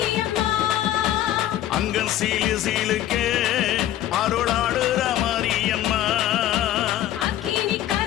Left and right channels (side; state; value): right; quieter; 12.7 dB